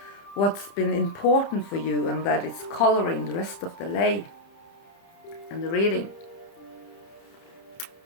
what's been important for you, and that is coloring the rest of the lay and the reading.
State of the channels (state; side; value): late; right; 30 ms